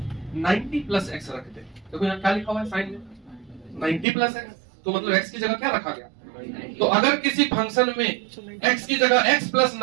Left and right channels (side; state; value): left; drops out; at 4.0 s